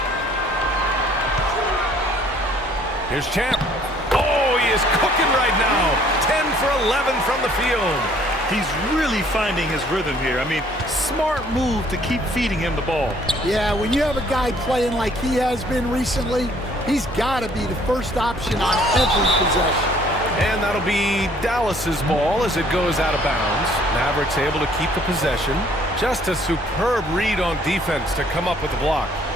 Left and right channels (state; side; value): normal; both; correlation 0.60